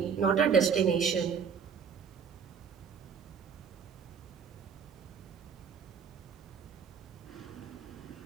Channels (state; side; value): quieter; left; 6.6 dB